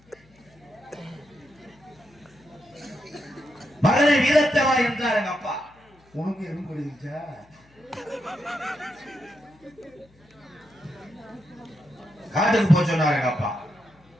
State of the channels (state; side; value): noise; left; hum, 30 dB below the sound